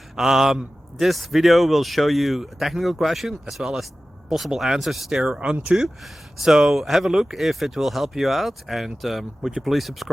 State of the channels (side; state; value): both; normal; correlation 0.95